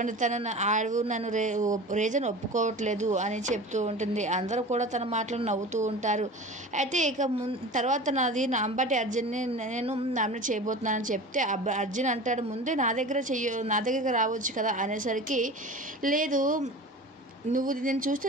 నన్ను రీజన్ ఒప్పుకోవట్లేదు అని చెప్తూ ఉంటుంది. అందరూ కూడా తన మాటలు నవ్వుతూ ఉంటారు. అయితే ఇక తర్వాత నాది అంబటి అర్జున్ని నేను నామినేట్ చేయబోతున్నానని చెప్తే అర్జున్ అంటాడు, ముందే నా దగ్గరికి రావచ్చు కదా అనేసరికి, లేదు నువ్వు నేను చూస్తే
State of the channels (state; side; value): normal; both; correlation 0.35